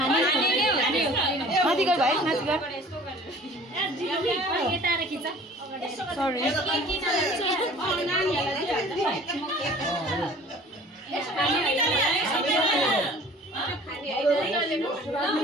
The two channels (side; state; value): both; normal; correlation 0.47